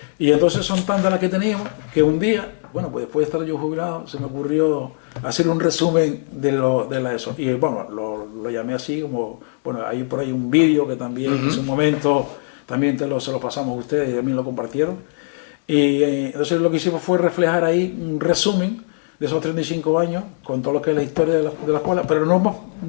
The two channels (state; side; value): silent; right; 65 dB below the other